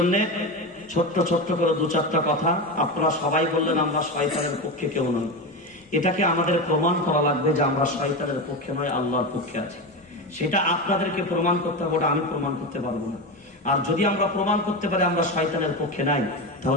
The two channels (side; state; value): both; normal; correlation 0.19